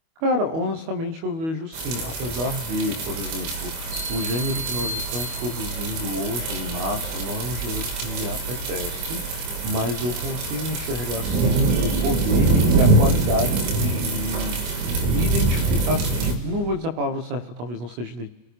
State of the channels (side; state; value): left; late; 25 ms